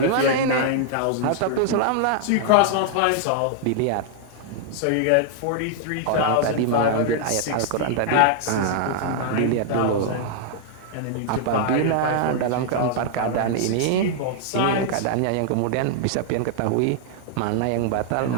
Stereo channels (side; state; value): both; different; correlation -0.01